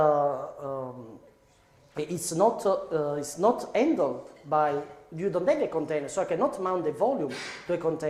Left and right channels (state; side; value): identical; both; correlation 1.00